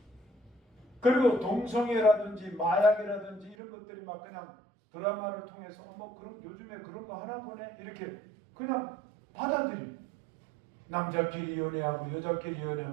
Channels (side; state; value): left; drops out; at 3.6 s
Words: 그리고 동성애라든지 마약이라든지 이런 것들이 막 그냥 드라마를 통해서 그럼 요즘에 그런 거 하나 보네 이렇게 그냥 받아들여요. 남자끼리 연애하고 여자끼리